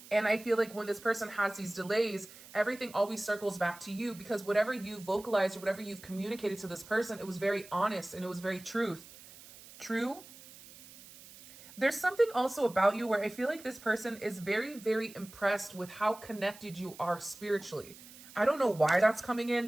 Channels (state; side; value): noise; right; hiss, 19 dB below the sound